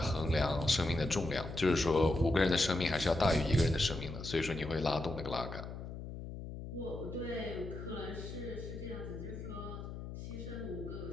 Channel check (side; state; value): left; noise; hum, 9 dB below the sound